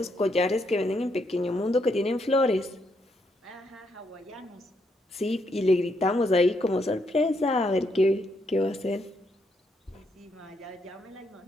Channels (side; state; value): both; normal; correlation 0.76